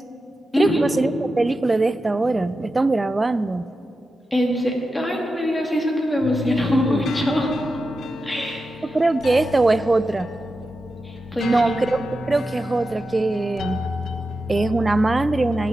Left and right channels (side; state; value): both; normal; correlation 0.91